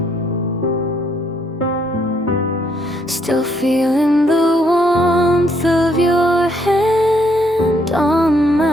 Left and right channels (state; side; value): normal; both; correlation 0.70